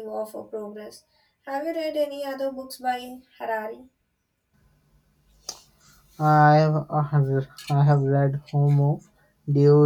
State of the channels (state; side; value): identical; both; correlation 1.00